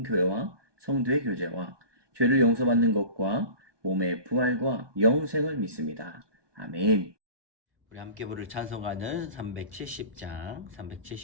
성도의 교제와 죄를 용서받는 것과 몸의 부활과 영생을 믿습니다. 아멘. 우리 함께 부를 찬송가는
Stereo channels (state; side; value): late; left; 1.2 ms